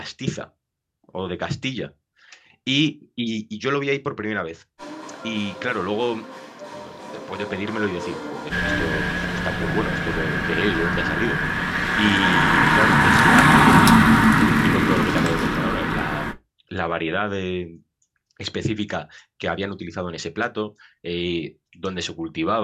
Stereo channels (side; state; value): both; identical; correlation 1.00